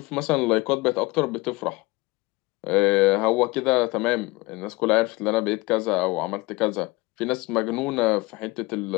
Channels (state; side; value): quieter; right; 22.7 dB